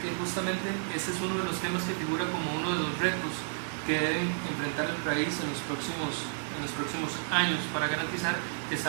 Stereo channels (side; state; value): left; silent; 57 dB below the other